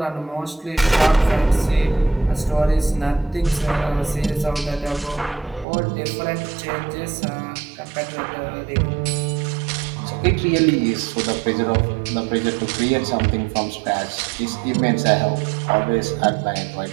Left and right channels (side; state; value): left; drops out; at 5.7 s